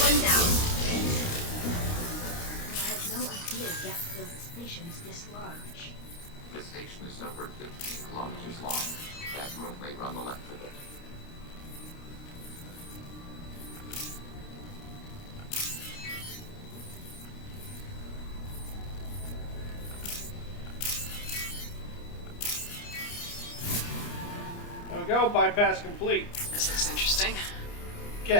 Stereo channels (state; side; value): late; right; 29 ms